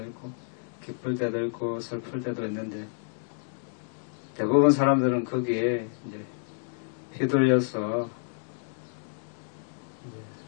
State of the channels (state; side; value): silent; right; 58 dB below the other